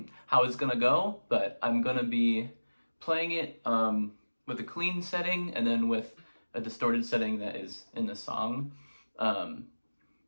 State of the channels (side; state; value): both; inverted; correlation -1.00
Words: how it's going to go, but I'm going to be playing it with a clean setting and then with a distorted setting that is in the song.